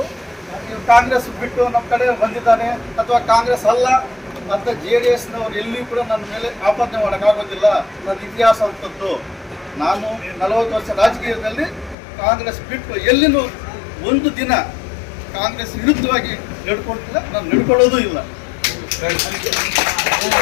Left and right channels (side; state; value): right; drops out; at 12.0 s